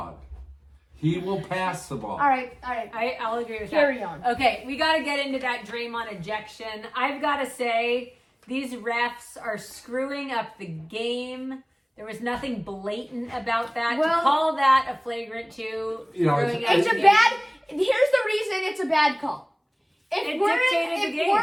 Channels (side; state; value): both; identical; correlation 1.00